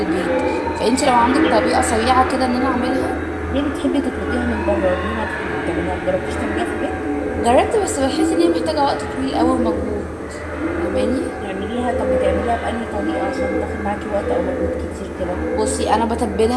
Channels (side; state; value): both; identical; correlation 1.00